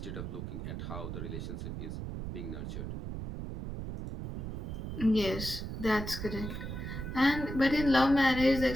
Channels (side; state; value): right; noise; rumble, 6 dB below the sound